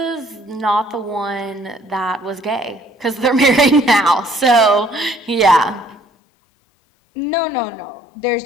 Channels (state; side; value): drops out; right; at 6.0 s